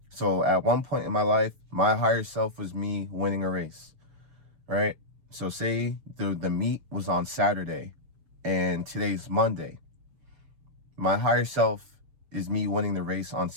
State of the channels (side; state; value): left; late; 6.9 ms